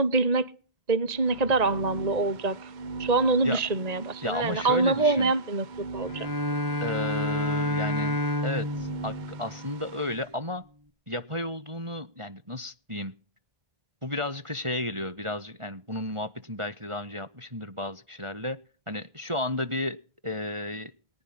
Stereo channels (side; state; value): left; late; 1.4 ms